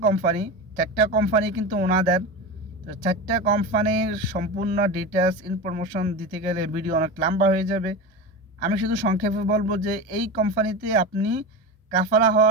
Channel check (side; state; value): both; normal; correlation 0.24